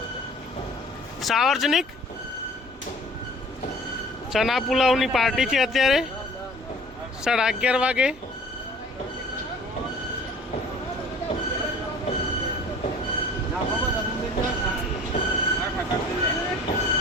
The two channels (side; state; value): both; normal; correlation 0.48